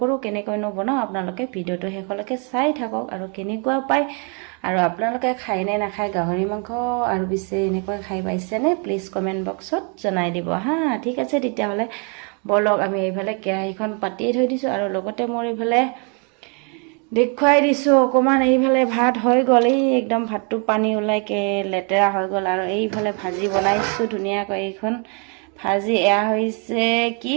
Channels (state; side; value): quieter; left; 36.8 dB